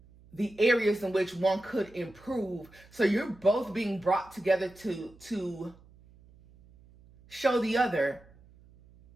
the areas in which one could improve. So you're both being brought together to show the other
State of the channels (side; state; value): right; noise; hum, 26 dB below the sound